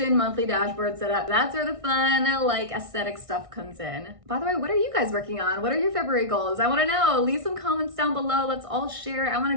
monthly dashboard setup. That's where the fun, like, aesthetic stuff comes in. By the way, what are you guys working on? What are your February goals? I wanna know. Leave some comments down below. Let's all share. I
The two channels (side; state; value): left; late; 1.6 ms